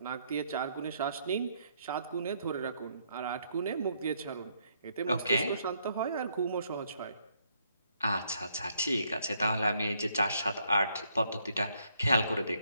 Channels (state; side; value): inverted; both; correlation -0.72